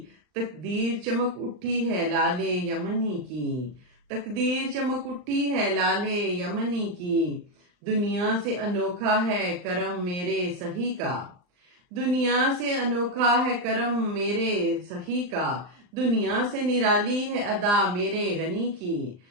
تقدیر چمک اٹھی ہے لال یمنی کی، تقدیر چمک اٹھی ہے لال یمنی کی۔ دنیا سے انوکھا ہے کرم میرے سہی کا، دنیا سے انوکھا ہے کرم میرے سہی کا، دنیا سے نرالی ہے ادا میرے غنی کی،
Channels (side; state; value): left; late; 39 ms